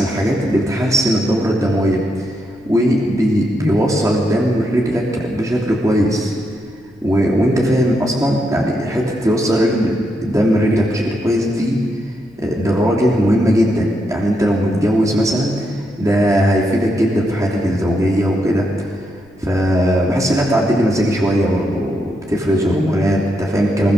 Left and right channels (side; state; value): left; noise; rumble, 28 dB below the sound